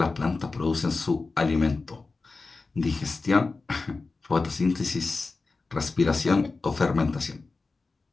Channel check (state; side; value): quieter; right; 3.9 dB